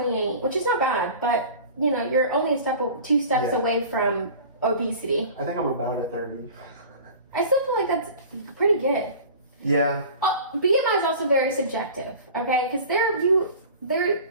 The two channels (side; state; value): both; inverted; correlation -0.40